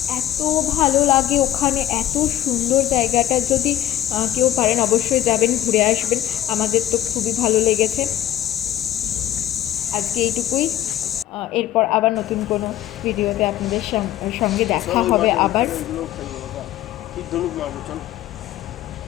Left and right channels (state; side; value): quieter; right; 12.6 dB